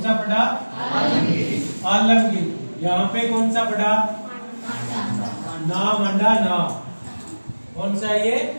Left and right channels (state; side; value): inverted; both; correlation -1.00